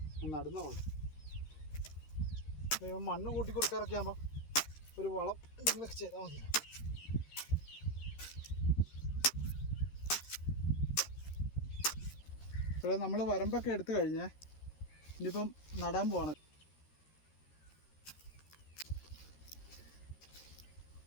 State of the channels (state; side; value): late; right; 13 ms